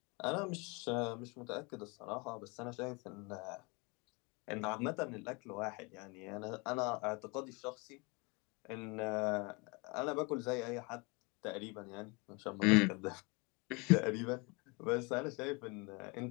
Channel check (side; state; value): right; quieter; 28.9 dB